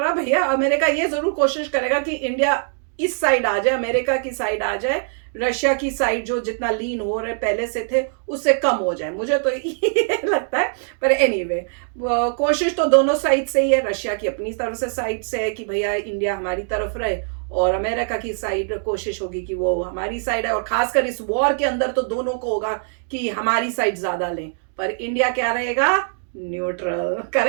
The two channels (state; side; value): silent; left; 64 dB below the other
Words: भैया। अमेरिका ये जरूर कोशिश करेगा कि इंडिया इस साइड आ जाए, अमेरिका की साइड आ जाए, रशिया की साइड जो जितना लीन हो रहे पहले से थे उससे कम हो जाए, मुझे तो ये लगता है। पर एनीवे कोशिश तो दोनों साइड से ही है। रशिया की अपनी तरफ से साइड से है कि भैया इंडिया हमारी तरफ रहे, और अमेरिका की साइड कोशिश होगी कि वो हमारी साइड है। और खासकर इस वॉर के अंदर तो दोनों को होगा कि हमारी साइड ज्यादा लें, पर इंडिया क्या रहेगा? न्यूट्रल।